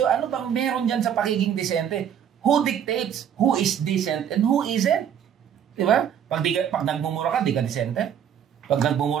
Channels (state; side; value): quieter; left; 8.9 dB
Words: Ano bang meron dyan sa pagiging decente? Who dictates who is decent and who isn't? Diba? Pag nagmumura ka, di ka decente. Pag